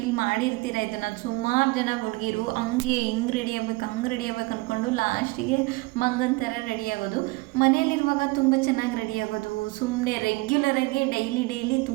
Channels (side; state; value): left; quieter; 24.2 dB